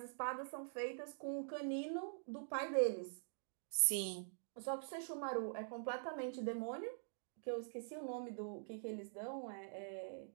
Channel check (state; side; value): silent; left; digital silence